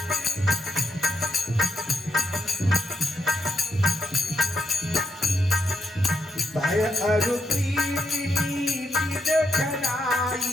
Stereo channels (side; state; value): both; normal; correlation 0.82